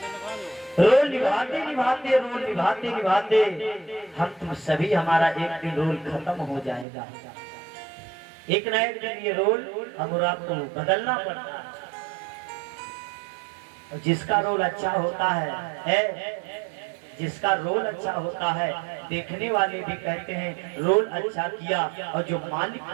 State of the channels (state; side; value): drops out; left; at 6.9 s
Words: रोल निभाते निभाते हम तुम सभी हमारा एक दिन रोल खत्म हो जाएगा। एक न एक दिन ये रोल हम और आपको बदलना पड़ता है। जिसका रोल अच्छा होता है जिसका रोल अच्छा होता है देखने वाले भी कहते हैं रोल अच्छा किया और जो मालिक